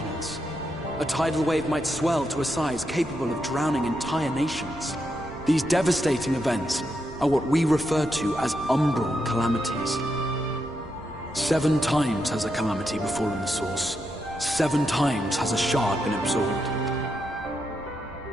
A tidal wave might swell to a size capable of drowning entire nations. These devastating events are what we refer to as umbral calamities. 7 times has a calamity befallen the source. 7 times has a shard been absorbed.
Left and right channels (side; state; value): both; normal; correlation 0.83